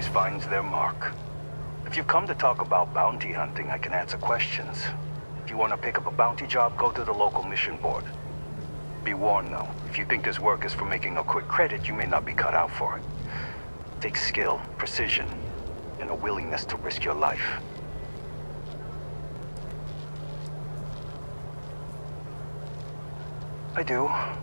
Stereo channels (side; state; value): both; inverted; correlation -1.00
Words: finds their mark. If you've come to talk about bounty hunting, I can answer questions. If you want to pick up a bounty job, go to the local mission board. Be warned though, if you think this work is for making a quick credit, you may not be cut out for it. It takes skill, precision, and a willingness to risk your life. I do,